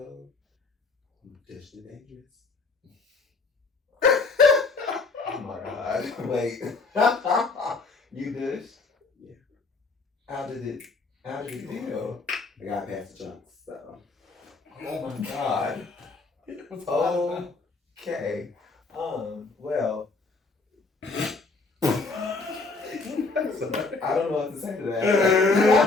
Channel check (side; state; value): right; quieter; 3.9 dB